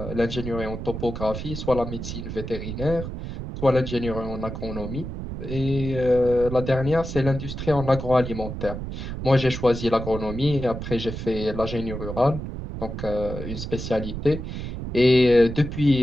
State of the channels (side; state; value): right; noise; rumble, 7 dB below the sound